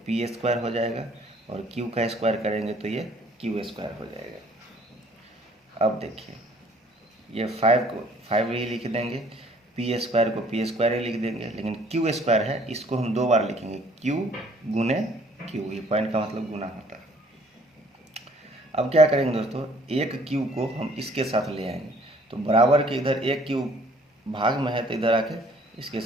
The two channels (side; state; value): both; normal; correlation 0.58